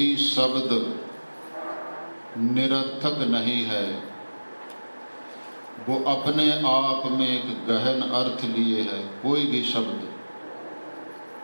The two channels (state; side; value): inverted; both; correlation -1.00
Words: शब्द निरर्थक नहीं है। वो अपने आप में एक गहन अर्थ लिए है कोई भी शब्द।